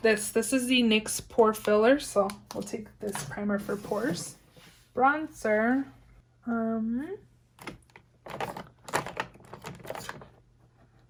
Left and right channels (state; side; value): identical; both; correlation 1.00